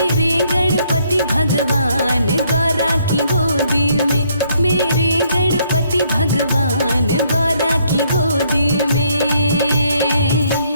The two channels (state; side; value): inverted; both; correlation -0.69